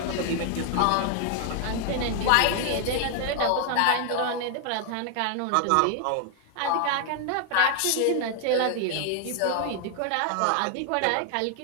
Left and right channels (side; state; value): both; different; correlation 0.00